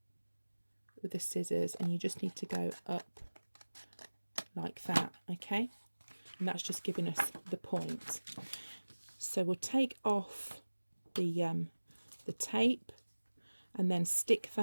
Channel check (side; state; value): both; inverted; correlation -1.00